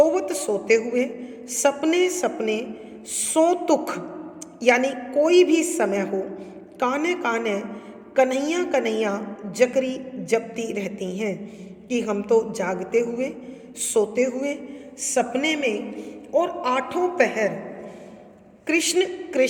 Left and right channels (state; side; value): identical; both; correlation 1.00